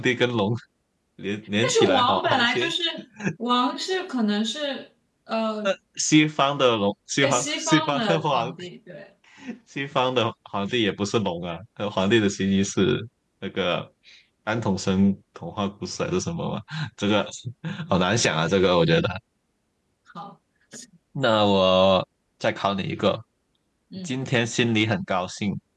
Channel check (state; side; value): identical; both; correlation 1.00